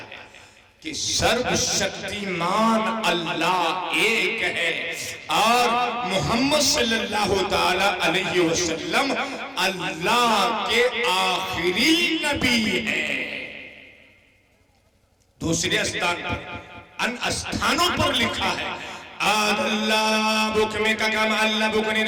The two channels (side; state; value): both; identical; correlation 1.00